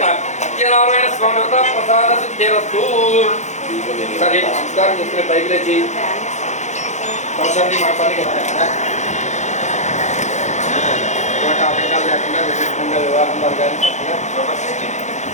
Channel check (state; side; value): late; right; 0.34 ms